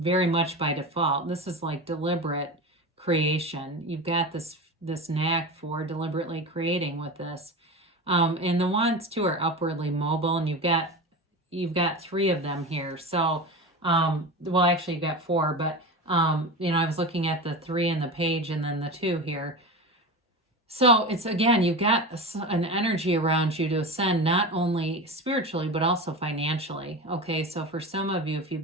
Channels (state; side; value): normal; both; correlation 0.26